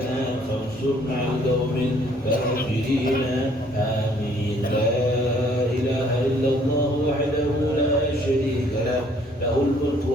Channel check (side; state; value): both; normal; correlation 0.61